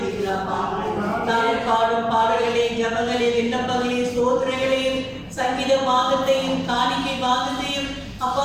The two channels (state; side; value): identical; both; correlation 1.00